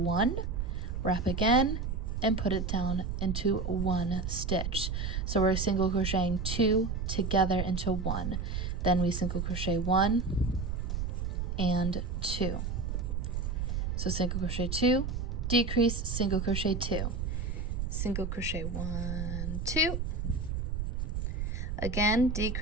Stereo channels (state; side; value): noise; right; rumble, 2 dB below the sound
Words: wrap again, and put it down into 1 stitch. So we're single crocheting 2 together into 1. Then we single crochet 1 and 2. So single crochet 2, decrease, single crochet 2, single crochet 1, 2, again